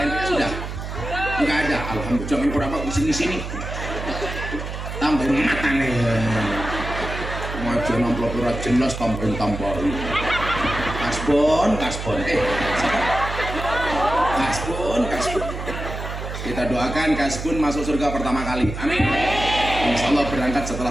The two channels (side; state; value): right; noise; hum, 7 dB below the sound